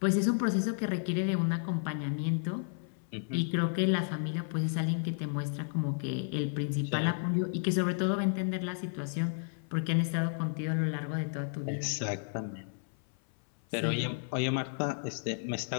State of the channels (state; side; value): silent; right; 56 dB below the other